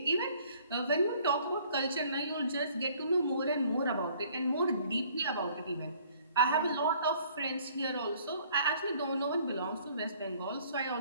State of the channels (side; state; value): both; inverted; correlation -0.57